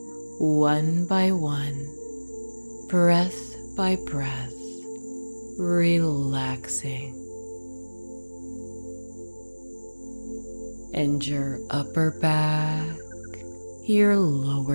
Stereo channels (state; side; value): inverted; both; correlation -1.00